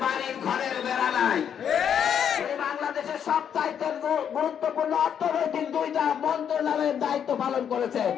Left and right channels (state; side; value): quieter; right; 8.4 dB